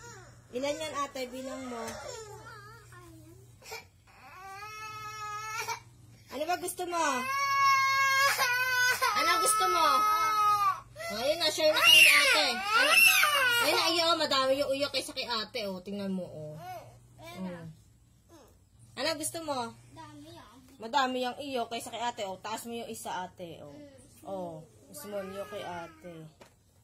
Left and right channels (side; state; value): both; identical; correlation 1.00